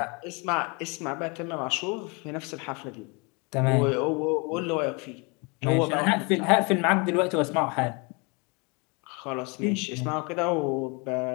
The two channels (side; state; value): right; quieter; 30.5 dB